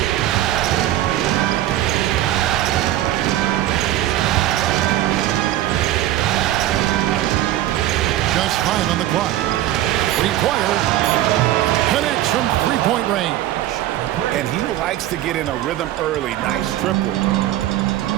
Just 5 on the clock. Three-pointer connects from three-point range. And he likes to get in a rhythm early. Nice triple.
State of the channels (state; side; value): quieter; left; 13.8 dB